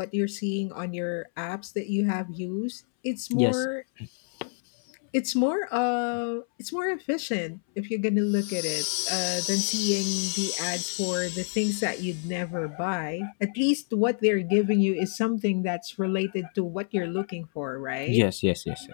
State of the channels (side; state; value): right; silent; 60 dB below the other